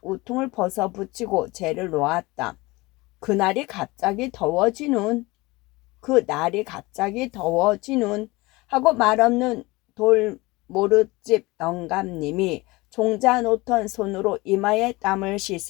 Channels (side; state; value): right; quieter; 22.3 dB